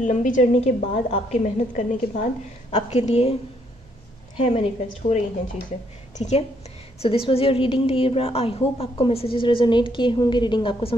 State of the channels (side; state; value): both; normal; correlation 0.71